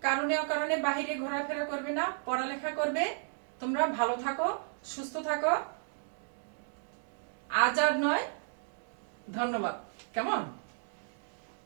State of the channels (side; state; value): left; silent; digital silence